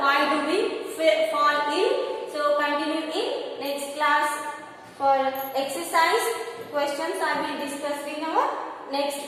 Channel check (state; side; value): identical; both; correlation 1.00